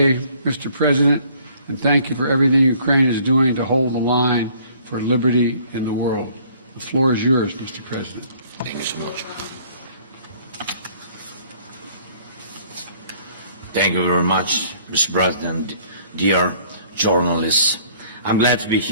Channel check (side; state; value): both; inverted; correlation -0.58